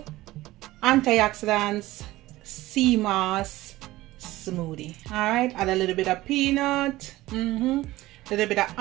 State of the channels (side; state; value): left; quieter; 17.5 dB